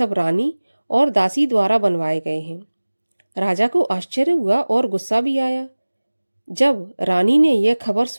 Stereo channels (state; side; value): inverted; both; correlation -1.00